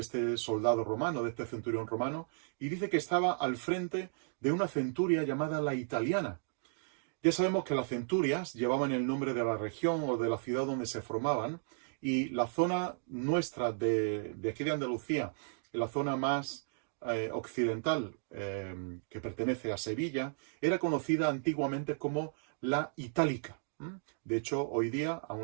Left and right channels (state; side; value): silent; left; digital silence